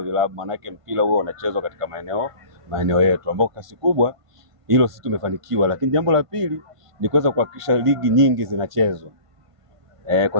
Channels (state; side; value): late; left; 1.5 ms